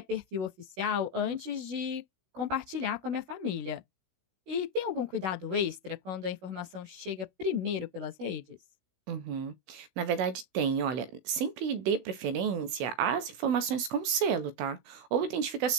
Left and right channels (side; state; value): left; late; 16 ms